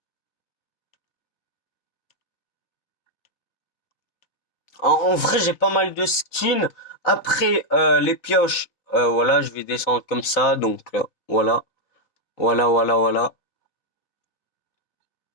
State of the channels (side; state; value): right; late; 3.9 ms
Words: En vrai, j'ai pas mal de skins. Après les pioches, voilà, je vais descendre comme ça, donc voilà, voilà.